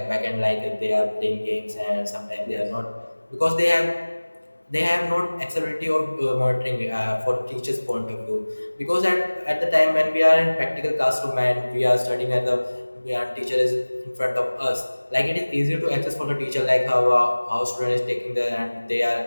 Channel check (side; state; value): both; inverted; correlation -1.00